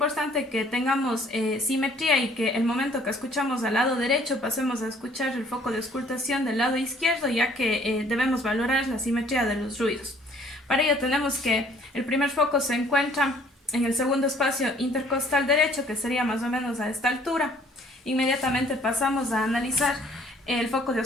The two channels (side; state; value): both; normal; correlation 0.58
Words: que tengamos simetría y que el momento que escuchamos al lado derecho pasemos a escuchar el foco de auscultación del lado izquierdo, ya que debemos valorar la simetría de los ruidos. Para ello tenemos que el primer foco se encuentra en el segundo espacio intercostal derecho, que sería más o menos a esta altura. Inmediatamente pasamos a analizar el foco de